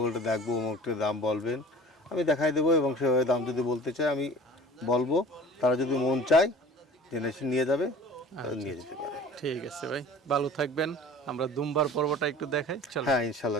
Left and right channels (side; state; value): both; normal; correlation 0.43